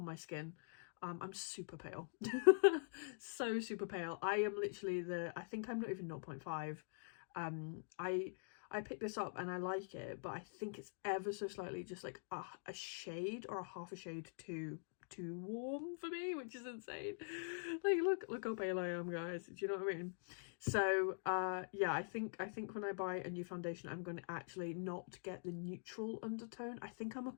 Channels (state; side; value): silent; right; digital silence